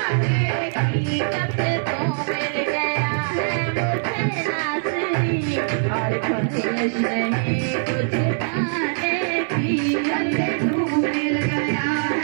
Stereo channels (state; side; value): silent; left; 62 dB below the other